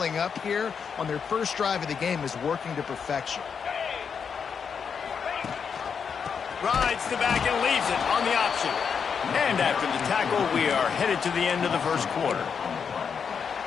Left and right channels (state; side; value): quieter; right; 6.5 dB